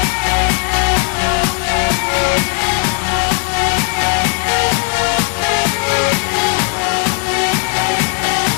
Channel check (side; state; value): right; quieter; 36.7 dB